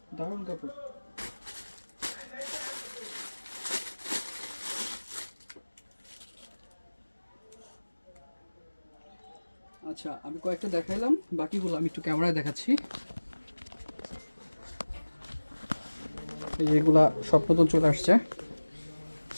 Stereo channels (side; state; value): both; inverted; correlation -1.00